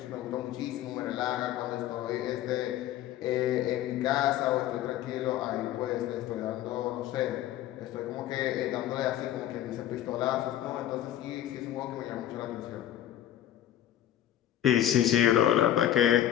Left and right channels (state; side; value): quieter; right; 11.9 dB